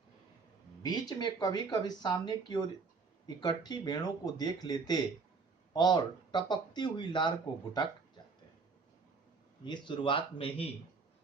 बीच में कभी कभी सामने की ओर इकट्ठी भेड़ों को देख लेते और टपकती हुई लार को घुटक जाते। ये शुरुआत में ही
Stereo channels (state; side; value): quieter; left; 4.6 dB